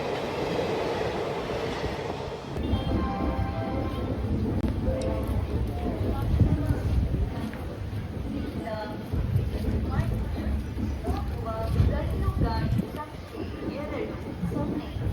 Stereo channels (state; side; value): identical; both; correlation 1.00